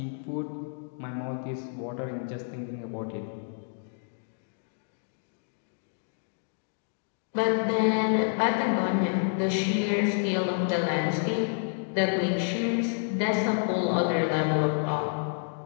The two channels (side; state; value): right; silent; digital silence